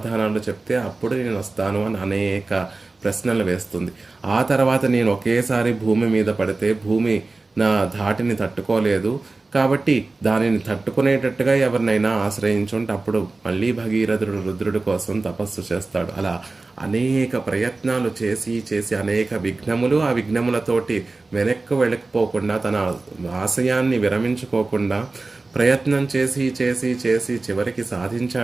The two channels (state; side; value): quieter; left; 3.5 dB